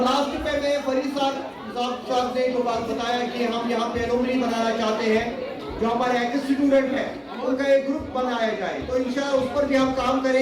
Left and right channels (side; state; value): both; identical; correlation 1.00